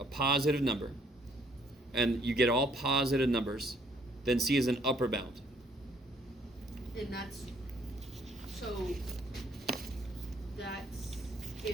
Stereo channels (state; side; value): normal; both; correlation 0.65